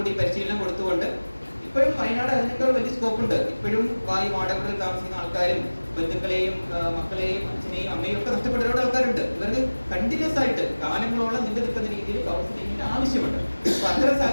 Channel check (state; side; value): inverted; both; correlation -1.00